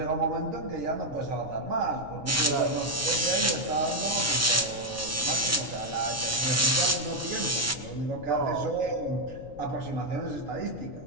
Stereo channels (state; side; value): noise; left; rumble, 16 dB below the sound